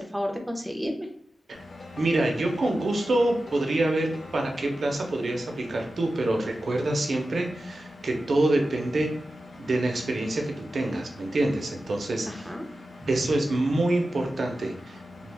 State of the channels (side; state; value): both; normal; correlation 0.93